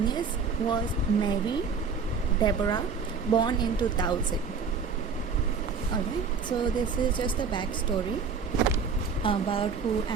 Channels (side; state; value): left; quieter; 5.4 dB